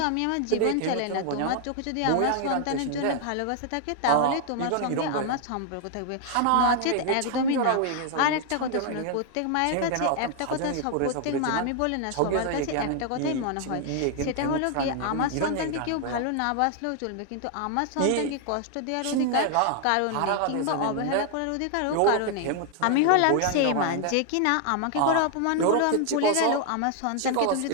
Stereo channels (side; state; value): both; different; correlation 0.00